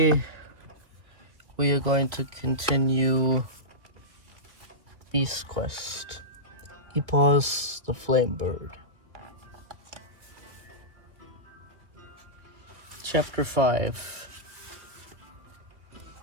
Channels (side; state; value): left; late; 2.0 ms